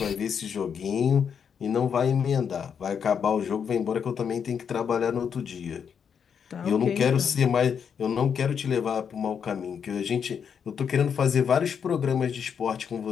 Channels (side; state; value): right; quieter; 7.2 dB